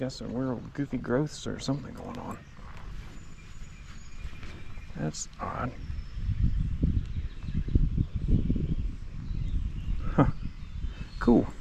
some weird goofy growths or something going on. That's odd. Huh. Cool.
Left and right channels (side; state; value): both; identical; correlation 1.00